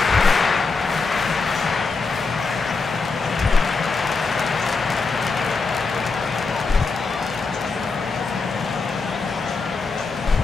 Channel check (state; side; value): quieter; right; 4.3 dB